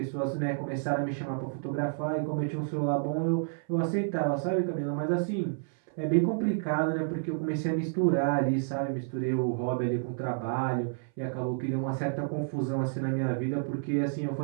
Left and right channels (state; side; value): silent; left; 58 dB below the other